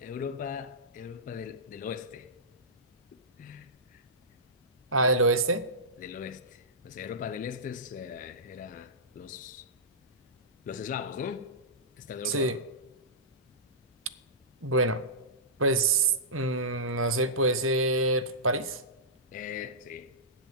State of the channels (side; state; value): both; normal; correlation -0.18